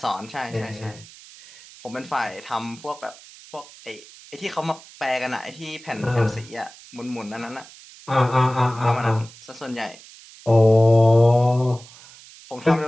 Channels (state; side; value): noise; right; hiss, 21 dB below the sound